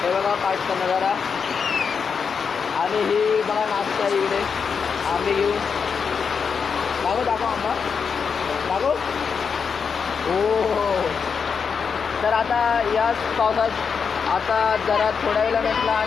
हे बघा पाठचा नजारा आणि ही बघा नाश्ता इकडे आम्ही घेऊन दाखव आंबा दाखव। हो तर आता या पावसात आता जरा थोड्या वेळा म्हटलं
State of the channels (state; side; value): quieter; right; 6.0 dB